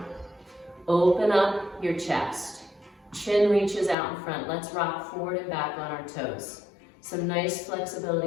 Open up your chest. Chin reaches out in front. Let's rock forward and back on our toes. Some nice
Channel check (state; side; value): drops out; right; at 4.0 s